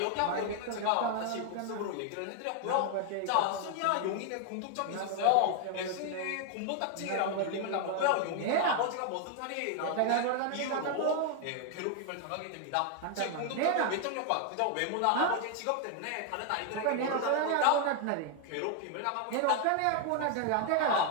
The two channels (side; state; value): both; different; correlation 0.00